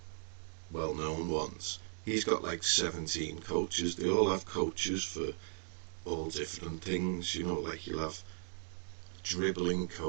well-known ones. He's got like 17 coaches. They all have coaches for all different things, you know, like you'll have dribbling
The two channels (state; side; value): silent; left; digital silence